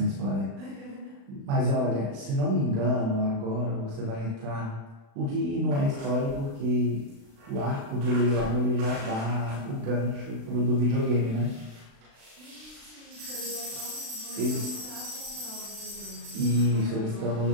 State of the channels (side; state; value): left; late; 36 ms